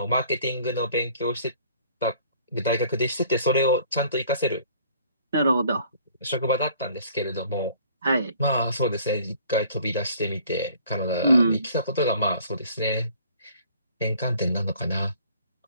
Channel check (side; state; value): both; inverted; correlation -0.55